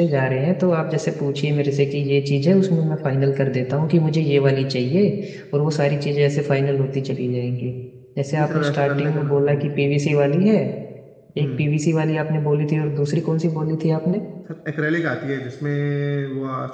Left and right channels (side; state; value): both; identical; correlation 1.00